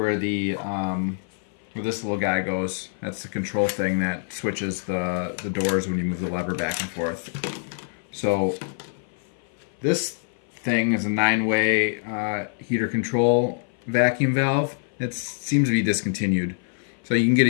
the where this little guy goes. That's the control thing that switches the doors when you move the lever back and forth. So this thing is a 9-way heater control vacuum valve. It seems to be discontinued. So you can get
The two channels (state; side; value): silent; right; 56 dB below the other